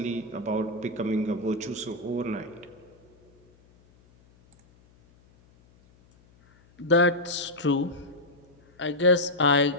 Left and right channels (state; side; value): noise; left; hum, 30 dB below the sound